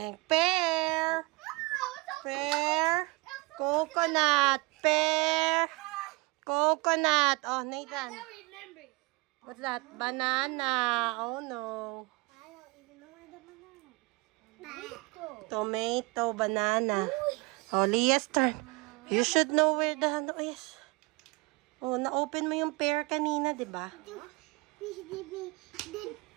coconut, pear, coconut. Oh, Nathan. remember. What's that? Banana. Oh, no. I don't even know where the banana is. Tomato, banana. Oh, Leah's turn. You should know where the... Oh, yes. Oh, na-open mo yung pear kanina, di ba?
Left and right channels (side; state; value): left; quieter; 25.2 dB